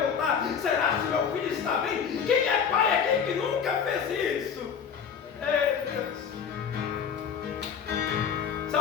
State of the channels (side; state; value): right; quieter; 7.1 dB